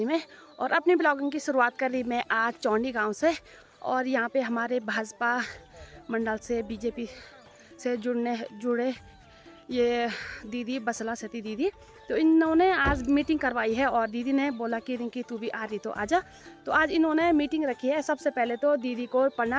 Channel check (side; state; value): both; identical; correlation 1.00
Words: में। और अपनी ब्लॉगिंग की शुरुआत कर ली मैं आज चौंडी गांव से। और यहाँ पे हमारे भाजपा मंडल से बीजेपी से जुड़े ये दीदी बसला सती दीदी, तो इन्होंने आज मीटिंग करवाई है। और दीदी ने बोला कि रिंकी तू भी आ रही तो आजा। तो आज इन्होंने मीटिंग रखी है। सबसे पहले तो दीदी को